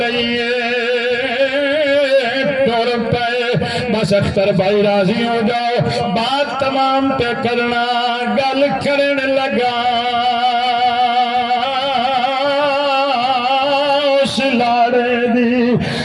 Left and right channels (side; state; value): both; identical; correlation 1.00